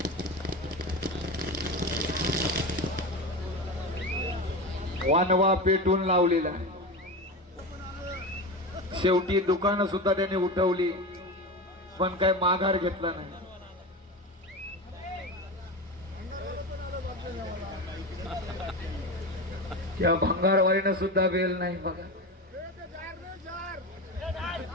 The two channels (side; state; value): both; normal; correlation 0.23